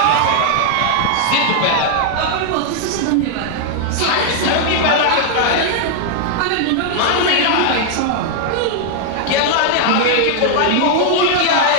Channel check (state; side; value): different; both; correlation 0.00